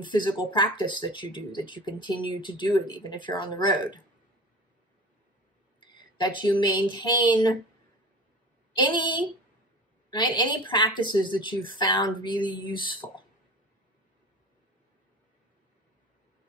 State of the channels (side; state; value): both; normal; correlation 0.36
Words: physical practice that you do, that you continue to do it even if you're on the road. That you maintain any practices that you've found really useful.